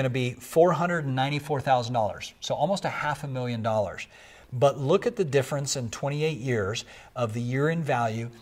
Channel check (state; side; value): identical; both; correlation 1.00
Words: to be $494,000, so almost $500,000. But look at the difference in 28 years of the year-end value